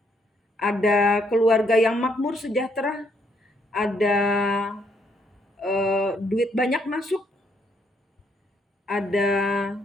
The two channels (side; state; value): both; normal; correlation 0.72